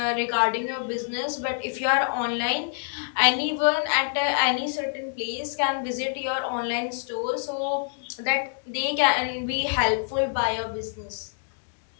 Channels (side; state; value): right; silent; digital silence